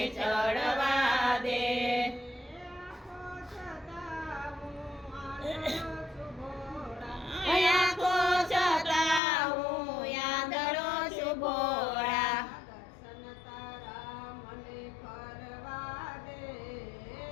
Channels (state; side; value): drops out; right; at 9.2 s